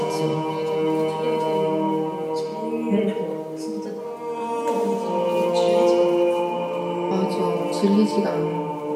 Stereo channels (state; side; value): identical; both; correlation 1.00